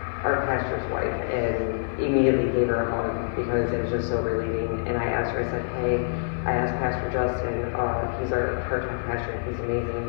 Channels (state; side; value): silent; right; digital silence